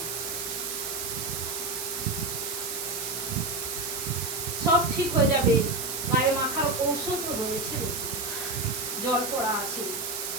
সব ঠিক হয়ে যাবে, গায়ে মাখার ঔষধ রয়েছে, জল পড়া আছে।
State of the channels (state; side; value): noise; right; hiss, 3 dB below the sound